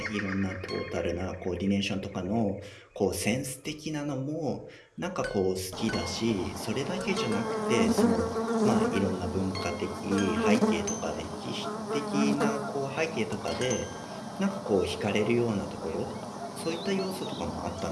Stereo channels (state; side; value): identical; both; correlation 1.00